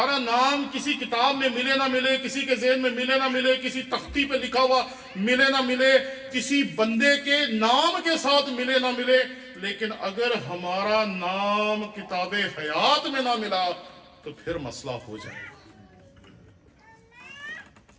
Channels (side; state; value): both; identical; correlation 1.00